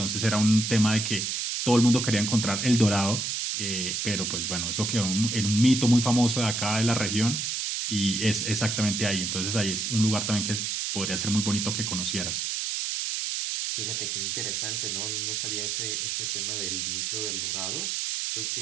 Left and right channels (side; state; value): right; noise; hiss, 1 dB below the sound